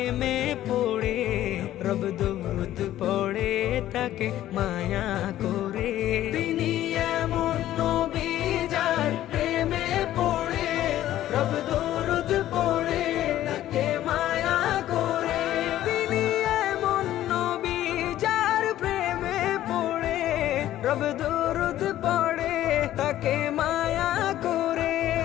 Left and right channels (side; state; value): right; quieter; 13.3 dB